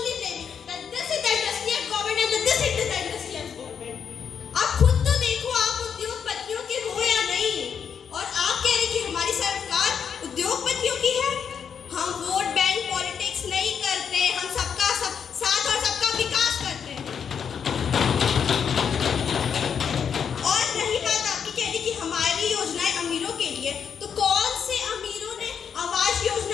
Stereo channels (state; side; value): quieter; right; 7.3 dB